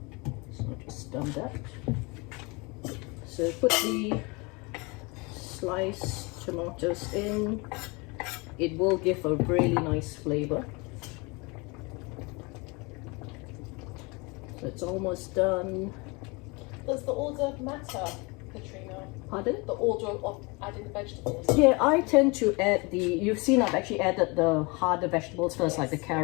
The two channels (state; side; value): quieter; right; 27.7 dB